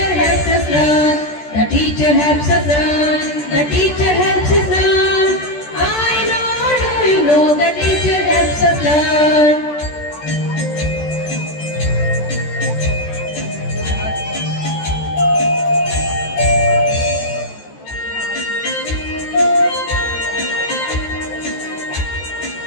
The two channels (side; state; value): right; late; 14 ms